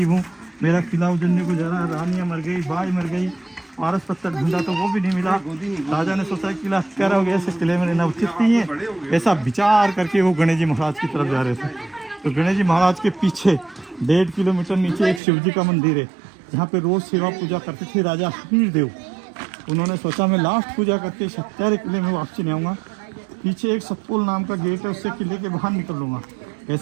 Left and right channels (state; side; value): drops out; left; at 15.2 s